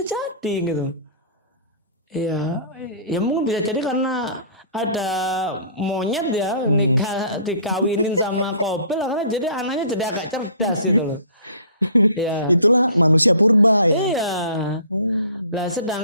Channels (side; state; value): both; inverted; correlation -0.48